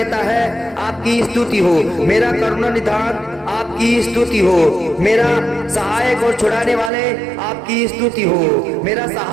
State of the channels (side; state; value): left; drops out; at 6.9 s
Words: है, आपकी स्तुति हो। मेरा करुणा निधान, आपकी स्तुति हो। मेरा सहायक और छुड़ाने वाले, आपकी स्तुति हो। मेरा